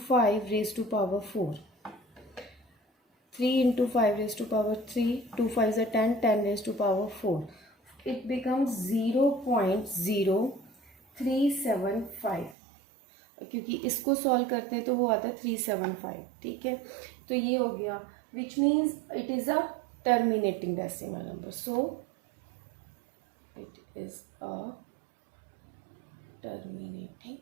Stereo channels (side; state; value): left; drops out; at 12.6 s